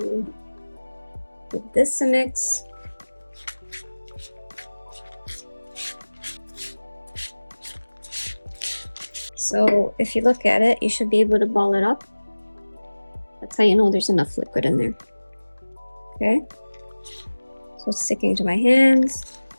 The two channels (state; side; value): inverted; both; correlation -1.00